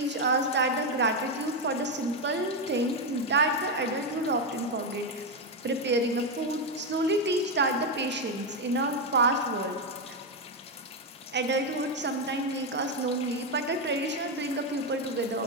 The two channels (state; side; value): normal; both; correlation 0.06